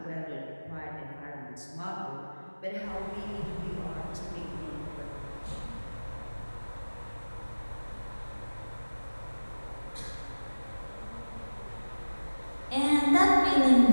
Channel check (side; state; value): both; inverted; correlation -1.00